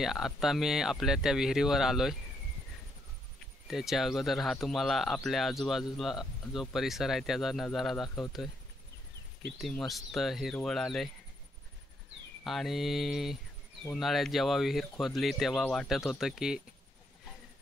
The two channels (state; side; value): normal; both; correlation 0.75